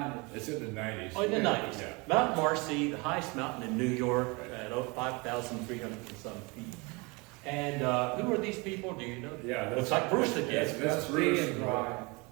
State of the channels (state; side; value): quieter; left; 27.5 dB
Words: It's in the 90s. Oh, in the 90s. Yeah. Mount Marcy, the highest mountain in New York at 5,300 and some feet. And who are these people? Do you know? Yeah, It's like Bruce again. That's Steve Bruce and Brian.